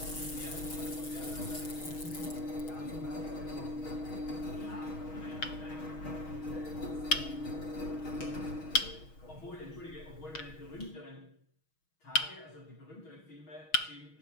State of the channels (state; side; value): late; right; 6.3 ms